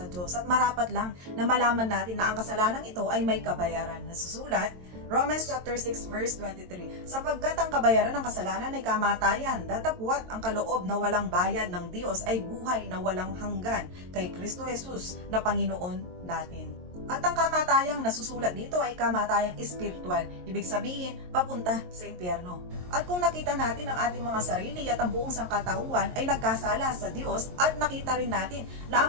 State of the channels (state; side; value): late; left; 22 ms